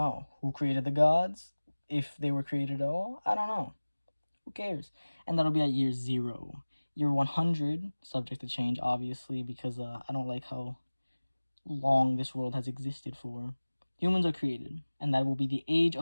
Who created the gods? If they were created at all, I don't know. Who cares? And that'll be at year 0. Year 100, subject to change, obviously, because I don't like how long this world has existed for. Humans are created, and that will be the age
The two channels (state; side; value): inverted; both; correlation -1.00